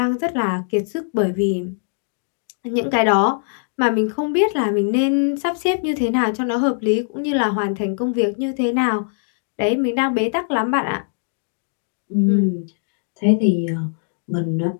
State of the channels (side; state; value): right; silent; digital silence